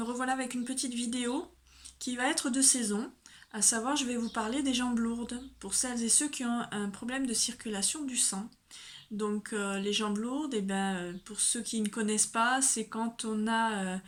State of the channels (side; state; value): both; identical; correlation 1.00